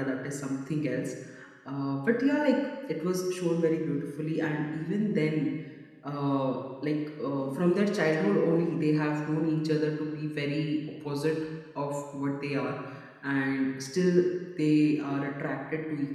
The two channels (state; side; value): identical; both; correlation 1.00